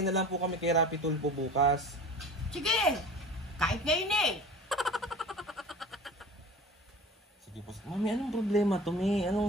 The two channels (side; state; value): both; normal; correlation 0.38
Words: na lang po kami kay Rapi Tulpo bukas. Sige, kahit ngayon eh. Sige po. Mami, anong problema to, Mi?